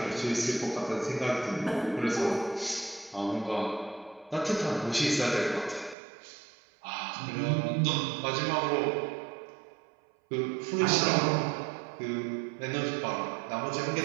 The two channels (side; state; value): left; drops out; at 6.0 s